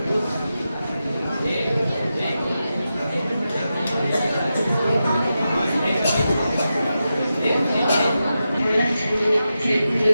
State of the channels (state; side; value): inverted; both; correlation -0.90